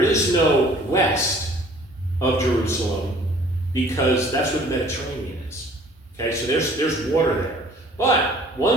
is no west of Jerusalem because that's where the Mediterranean is, okay? So there's water there. But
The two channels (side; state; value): both; normal; correlation 0.53